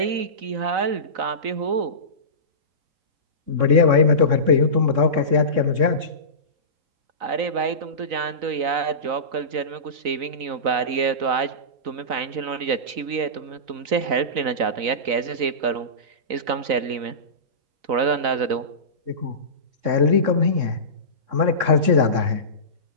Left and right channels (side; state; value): left; late; 4.0 ms